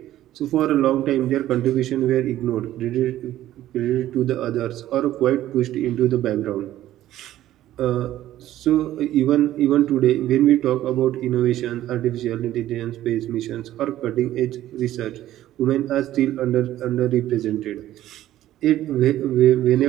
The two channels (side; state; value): left; quieter; 13.6 dB